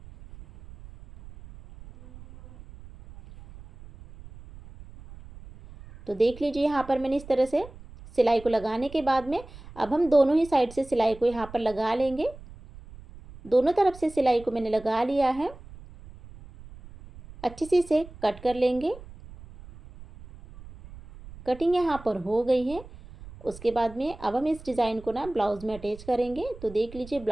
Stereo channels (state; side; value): noise; right; rumble, 18 dB below the sound